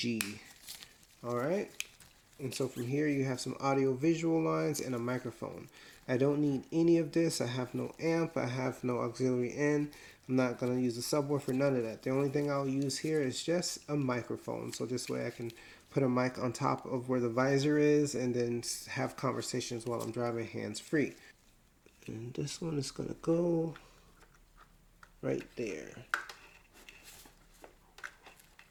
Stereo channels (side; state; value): both; identical; correlation 1.00